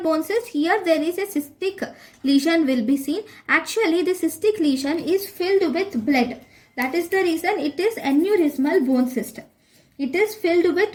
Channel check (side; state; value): both; identical; correlation 1.00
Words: bone cyst? Here there is a cystic lesion will be seen. Actually the cystic lesion is filled with blood. That is the reason it is aneurysmal bone cyst. It is filled